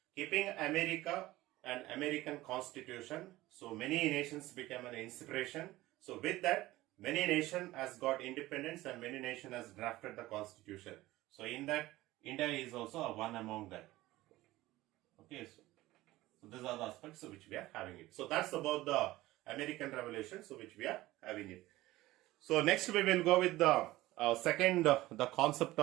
keeping America and American Constitution, so many nations became an inspiration. So with that, many nation has got independence and many nation has drafted the Constitution. So in that, India is also one among that. Okay, so these are the aspects which we are having it. So that's about the American Revolution, so which we are having it. So next we will go with the second, the concept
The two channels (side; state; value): left; quieter; 17.5 dB